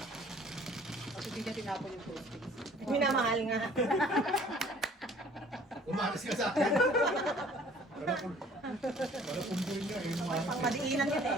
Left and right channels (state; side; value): normal; both; correlation 0.54